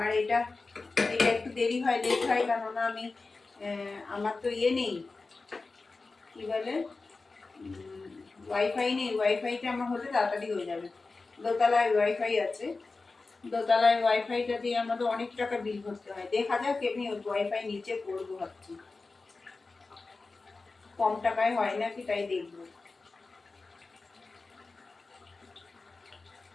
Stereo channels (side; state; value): right; quieter; 3.8 dB